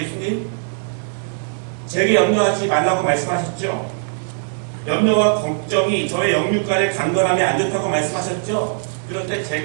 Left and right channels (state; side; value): silent; left; digital silence